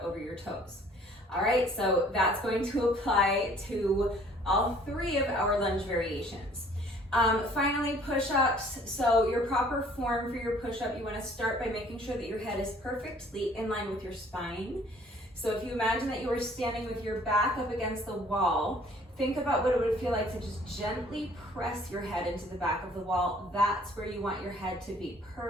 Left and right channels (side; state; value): both; normal; correlation 0.56